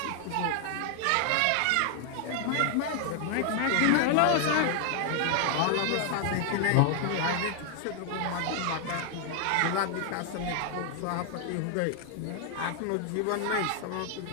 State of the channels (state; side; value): different; both; correlation 0.00